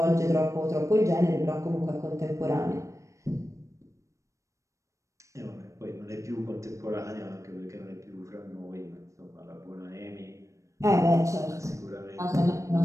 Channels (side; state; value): left; late; 0.15 ms